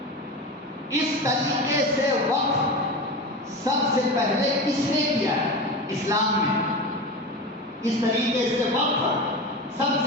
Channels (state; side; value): normal; both; correlation 0.26